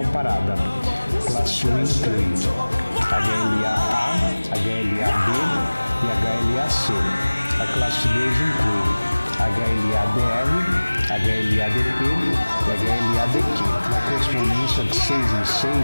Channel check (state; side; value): inverted; both; correlation -1.00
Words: Classe 1 inclui HLA-A, HLA-B e HLA-C. A classe 2 inclui HLA-DR, HLA-DP e HLA-DQ. Na correspondência de 6 em